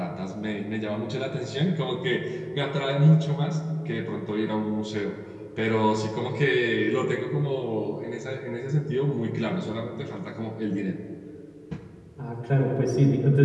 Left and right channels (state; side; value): identical; both; correlation 1.00